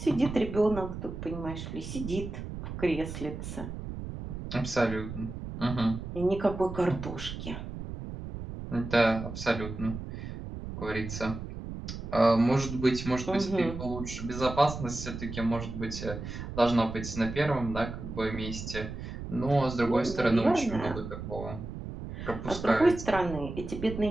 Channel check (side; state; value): right; noise; rumble, 8 dB below the sound